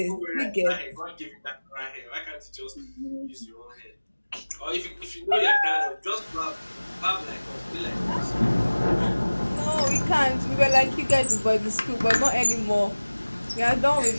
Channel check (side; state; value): both; inverted; correlation -1.00